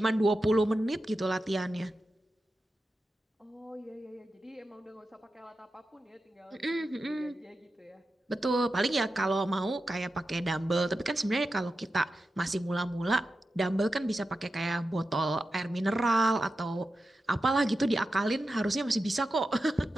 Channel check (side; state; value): both; normal; correlation 0.91